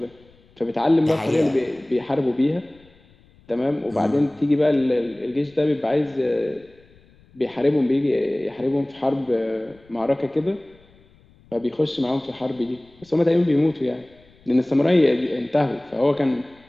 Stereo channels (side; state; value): left; noise; rumble, 29 dB below the sound